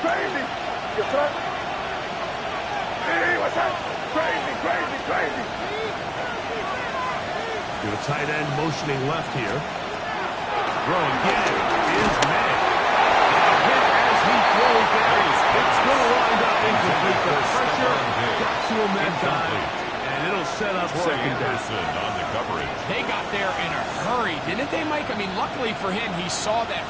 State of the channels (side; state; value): both; identical; correlation 1.00